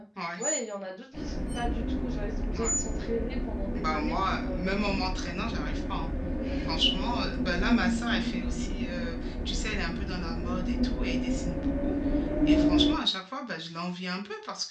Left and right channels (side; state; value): both; identical; correlation 1.00